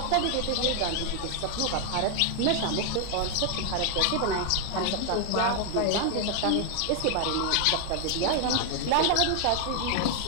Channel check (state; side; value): different; both; correlation 0.00